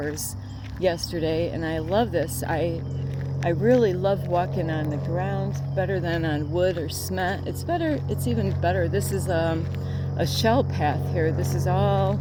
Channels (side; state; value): both; identical; correlation 1.00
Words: yesterday, and I love this. I really love walking on the ground, better than on wood or cement. It's better. It's even better. This is a shell path here. This is all